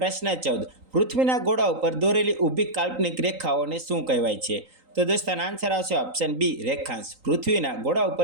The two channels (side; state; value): left; late; 3.9 ms